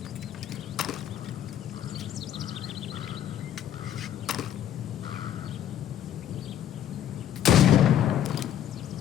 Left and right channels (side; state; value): right; quieter; 10.5 dB